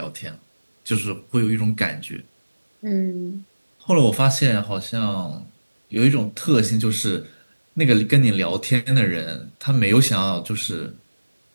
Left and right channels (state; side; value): inverted; both; correlation -1.00